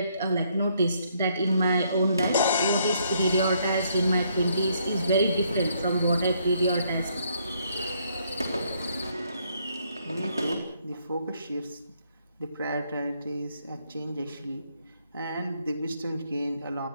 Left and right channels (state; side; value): inverted; both; correlation -0.70